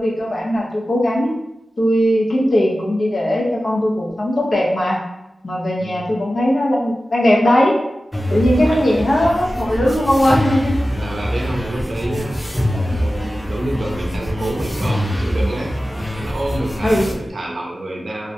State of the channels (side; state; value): both; normal; correlation 0.95